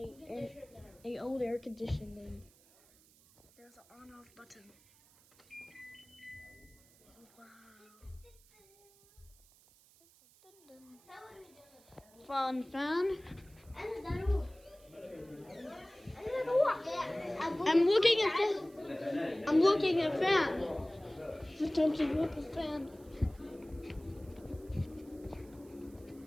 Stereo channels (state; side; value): noise; right; hiss, 27 dB below the sound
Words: old air conditioning. There's an on-off button. Wow. Fun fan. I'm looking at fan. It's time to look at fan.